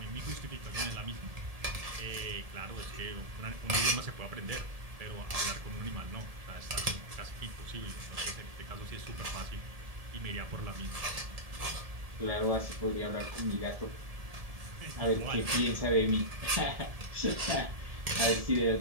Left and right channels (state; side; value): late; left; 1.7 ms